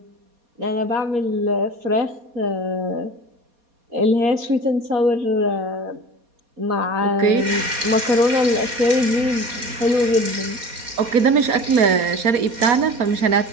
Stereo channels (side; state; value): left; late; 4.2 ms